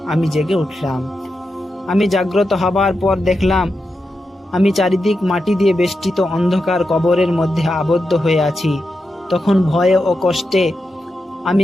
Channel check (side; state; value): both; normal; correlation 0.88